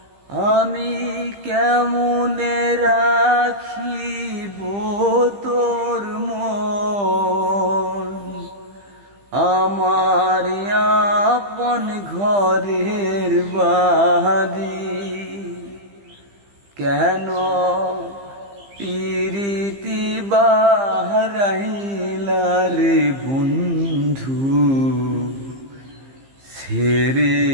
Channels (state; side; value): late; left; 15 ms